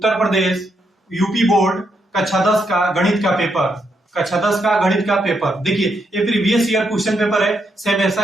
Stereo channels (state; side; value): normal; both; correlation 0.79